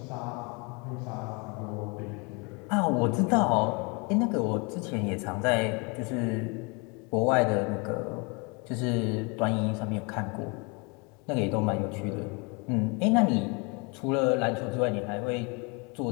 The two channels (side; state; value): right; quieter; 30.5 dB